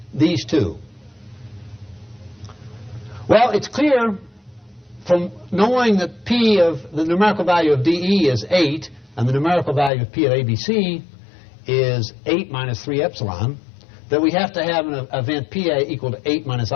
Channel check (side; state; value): right; drops out; at 9.9 s